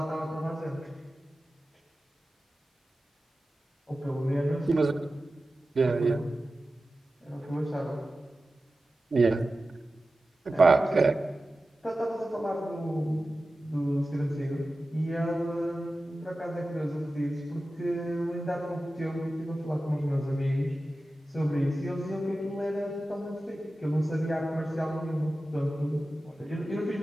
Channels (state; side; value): normal; both; correlation 0.95